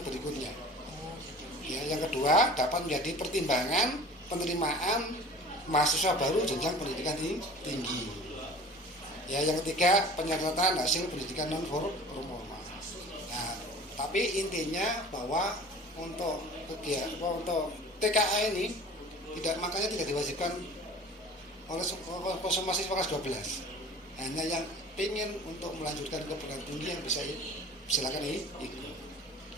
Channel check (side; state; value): both; normal; correlation 0.42